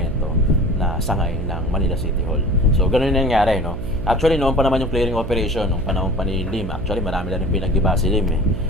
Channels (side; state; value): right; noise; hum, 7 dB below the sound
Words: na sangay ng Manila City Hall. So ganun yung nangyari, no? Actually noon pa naman yung clearing operation nung panahon pa ni Lim. Actually marami na rin pinag-iba si Lim eh.